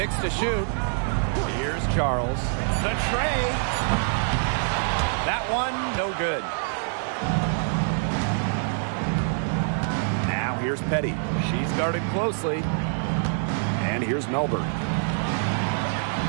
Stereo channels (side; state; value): left; silent; 61 dB below the other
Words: to shoot. Here's Charles. The tray. That one, no good. Now here's Petty. She's guarded closely. And here's Melbourne.